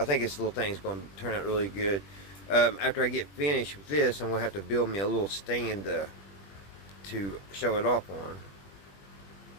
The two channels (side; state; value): right; late; 20 ms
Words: think this little thing is gonna turn out really good. After I get finished with this, I'm gonna have to build me a little stand to show it off on.